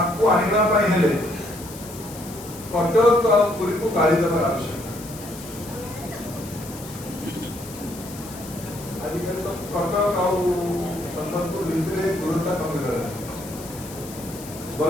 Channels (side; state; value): left; noise; hiss, 15 dB below the sound